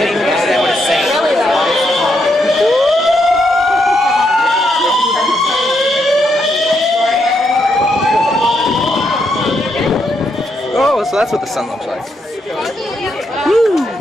understand what it's saying. Oh, so that's what the sun looks like. Woo!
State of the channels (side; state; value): both; normal; correlation 0.78